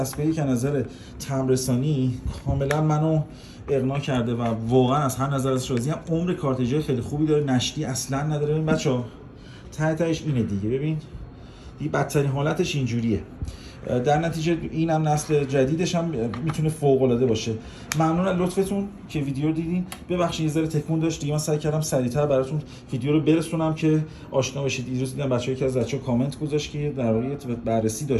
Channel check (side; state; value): both; identical; correlation 1.00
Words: که نظر تمرسانی کاملا منو اقناع کرده و واقعا از هر نظر ازش راضیم. عمر کارتریج خیلی خوبی داره، نشتی اصلا نداره. ببین بچه‌ها تهش اینه دیگه. ببین دیگه بدترین حالتش اینجوریه. در نتیجه اینم نسل جدیدش هم میتونه فوق العاده باشه. ممنون از لطفتون که ویدیو رو دیدین. ببخشید یه ذره تکون داشت دیگه، من سعی کردم سریعتر براتون ویدیو رو برسونم که آشنا بشید. دیروز دیدم بچه‌ها که از بچه‌ها کامنت گذاشت که در واقع بررسی